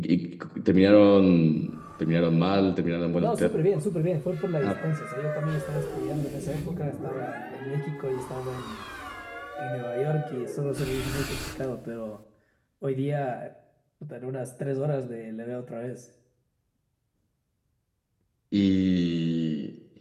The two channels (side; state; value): both; identical; correlation 1.00